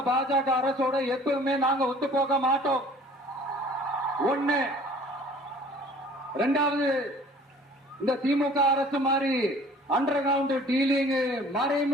பாஜக அரசோட எப்பவுமே நாங்க ஒத்து போக மாட்டோம். ஒண்ணு. ரெண்டாவது, இந்த திமுக அரசு மாதிரி அண்டர் கிரவுண்ட் டீலிங்,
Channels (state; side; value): normal; both; correlation 0.50